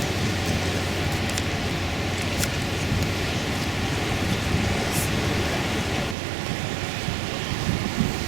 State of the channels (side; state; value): left; drops out; at 6.2 s